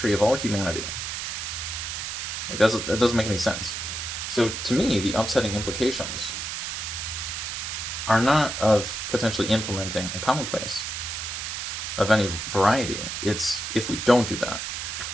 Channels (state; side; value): noise; right; hiss, 4 dB below the sound